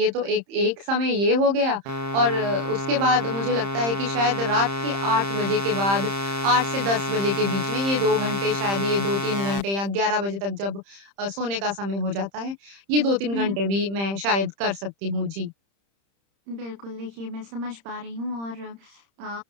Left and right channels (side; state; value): left; late; 30 ms